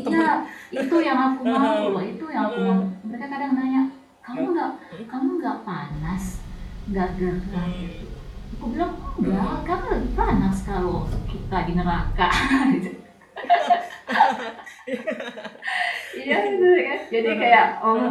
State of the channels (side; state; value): both; identical; correlation 1.00